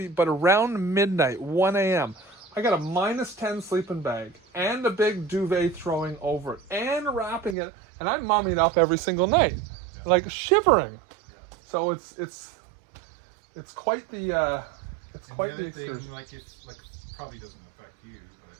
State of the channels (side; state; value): left; drops out; at 7.6 s